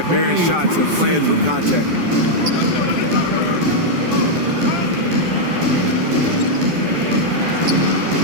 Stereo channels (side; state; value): left; late; 12 ms